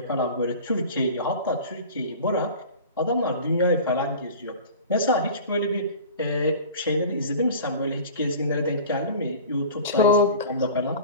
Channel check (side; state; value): both; inverted; correlation -0.39